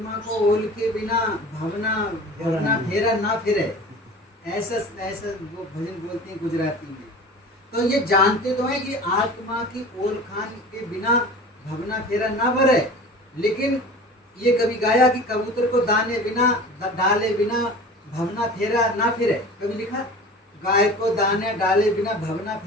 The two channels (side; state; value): both; normal; correlation 0.38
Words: को ओल के बिना भवना फेरा ना फिरे, ऐसा वो भजन बोलते हैं गुजराती में। तो ये जानते तो हैं कि आत्मा की ओल खान के बिना भवना फेरा ना भरे, लेकिन ये कभी गाया कि कबूतर को दाने बिना डाले बिना भवना फेरा ना फिरे, कभी लिखा? गाय को दाने डाले बिना भवना